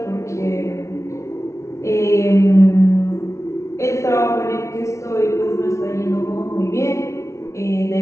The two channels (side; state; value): right; late; 0.14 ms